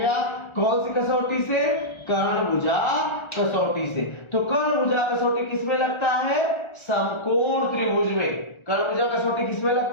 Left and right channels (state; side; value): late; right; 1.4 ms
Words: कौन सी कसौटी से? कर्ण भुजा कसौटी से। तो कर्ण भुजा कसौटी किसमें लगता है? समकोण त्रिभुज में। कर्ण भुजा कसौटी किसमें